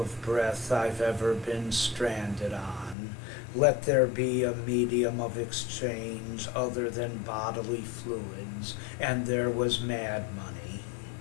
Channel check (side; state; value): right; drops out; at 3.0 s